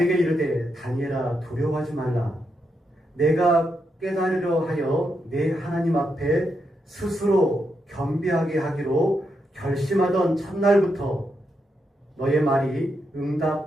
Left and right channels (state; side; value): normal; both; correlation 0.82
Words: 이르되 다니엘아, 두려워하지 말라. 내가 깨달으려 하여 내 하나님 앞에 스스로 겸비하게 하기로 결심하던 첫날부터 너의 말이